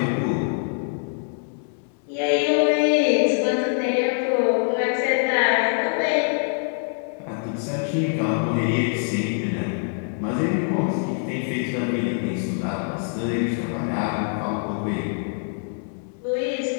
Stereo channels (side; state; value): right; silent; 62 dB below the other